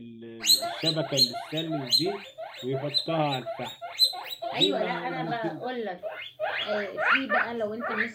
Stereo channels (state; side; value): identical; both; correlation 1.00